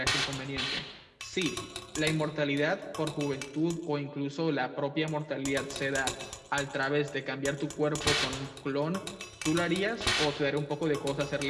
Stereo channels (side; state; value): both; identical; correlation 1.00